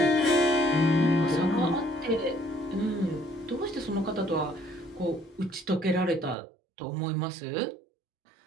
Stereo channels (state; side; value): drops out; left; at 6.4 s